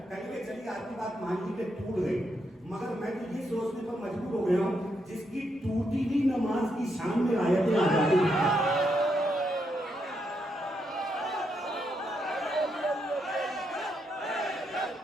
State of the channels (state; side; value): normal; both; correlation 0.80